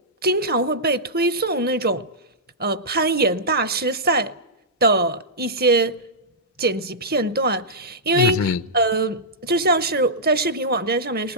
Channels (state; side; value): normal; both; correlation -0.13